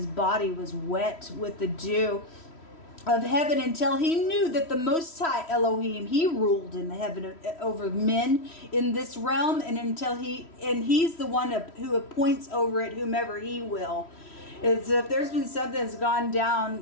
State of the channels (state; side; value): late; right; 3.1 ms